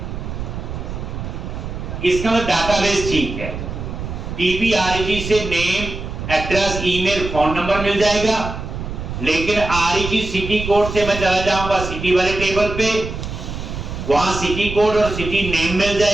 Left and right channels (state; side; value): noise; right; rumble, 7 dB below the sound